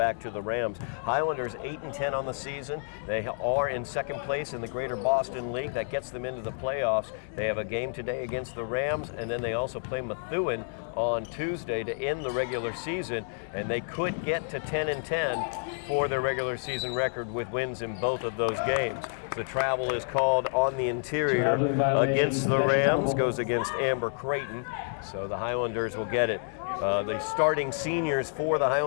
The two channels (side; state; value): right; silent; digital silence